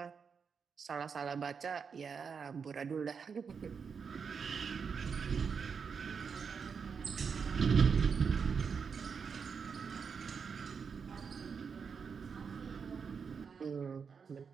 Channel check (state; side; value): quieter; left; 6.0 dB